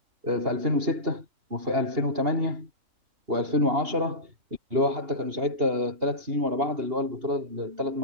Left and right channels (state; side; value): late; left; 2.8 ms